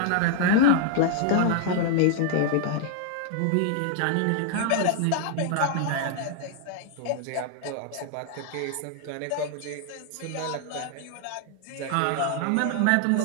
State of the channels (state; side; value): different; both; correlation 0.00